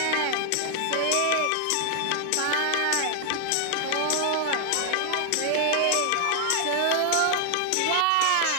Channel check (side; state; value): both; different; correlation 0.00